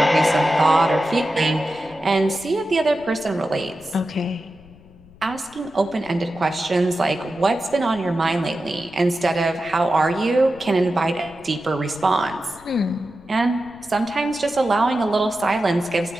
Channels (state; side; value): noise; left; rumble, 24 dB below the sound